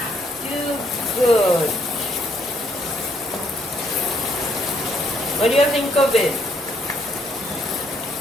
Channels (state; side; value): normal; both; correlation 0.70